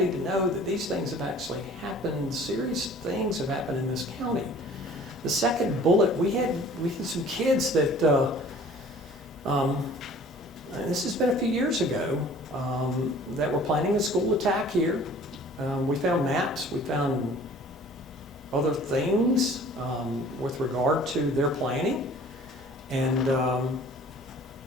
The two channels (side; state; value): both; normal; correlation 0.49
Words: to know that these things have actually happened. Serious things have happened in this county. The second bullet, we had some kids that, this has been a few years ago, that were planning a school attack here. We found maps, we found other things with regard to their planning. And